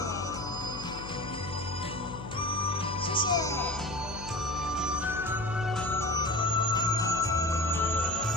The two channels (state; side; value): noise; left; hum, 11 dB below the sound